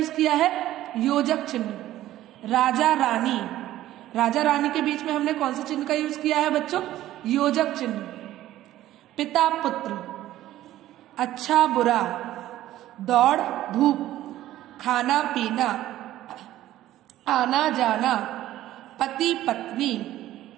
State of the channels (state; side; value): quieter; left; 14.1 dB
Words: किया है? योजक चिन्ह। राजा रानी, राजा रानी के बीच में हमने कौन से चिन्ह का यूज किया है बच्चों? योजक चिन्ह। पिता पुत्र, अच्छा बुरा, दौड़ धूप, खाना पीना, आना जाना, पति पत्नी,